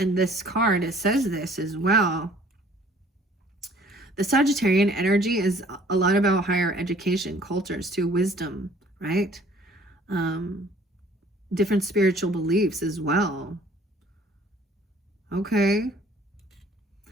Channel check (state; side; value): normal; both; correlation 0.56